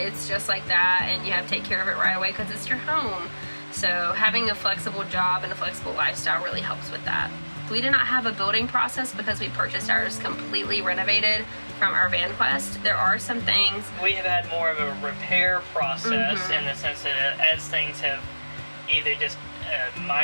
just like that, and you have to take care of it right away because it's your home. So having a flexible job and a flexible lifestyle really helps with that. We did not have a building process because we purchased ours completely renovated from our VanQuest. There are some things... We have had more of a repair process in the sense that as things have either just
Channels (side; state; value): both; inverted; correlation -1.00